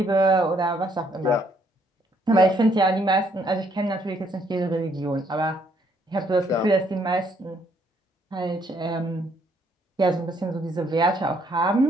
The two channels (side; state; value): both; normal; correlation 0.69